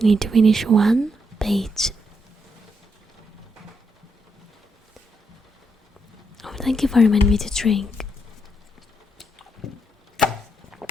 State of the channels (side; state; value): both; normal; correlation 0.79